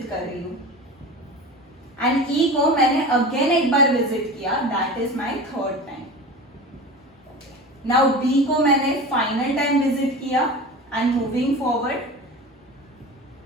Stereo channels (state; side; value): normal; both; correlation 0.32